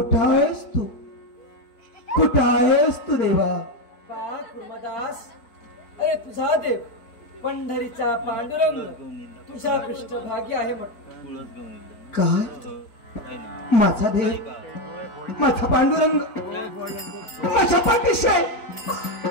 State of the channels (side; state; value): right; late; 4.6 ms